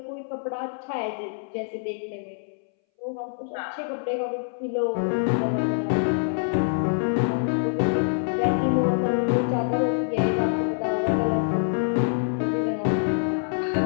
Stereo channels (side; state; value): right; silent; 61 dB below the other